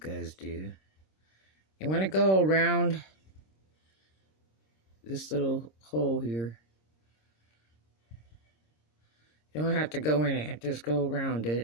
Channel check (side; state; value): right; late; 26 ms